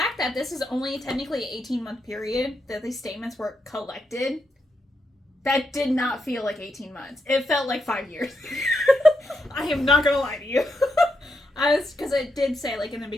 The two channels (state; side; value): normal; both; correlation 0.83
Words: that this is only technically an 18-month period that these statements were collected, that did not feel like 18 months. It felt like 5 years. I am not going to lie to you. Because it did say, like, in the